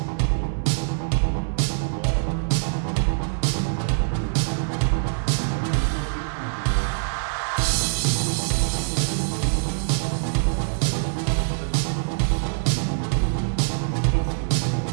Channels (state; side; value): silent; left; 58 dB below the other